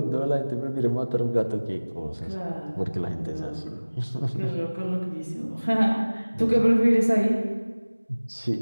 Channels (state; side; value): inverted; both; correlation -1.00